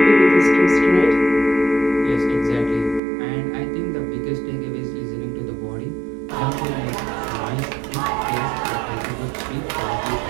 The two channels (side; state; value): left; drops out; at 3.0 s